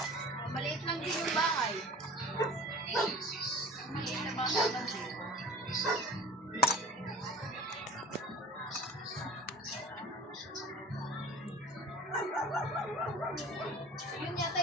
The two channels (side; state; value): both; normal; correlation 0.41